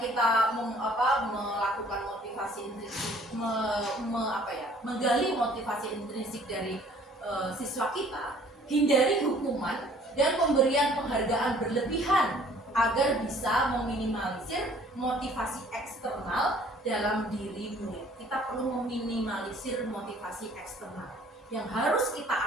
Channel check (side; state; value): both; normal; correlation 0.56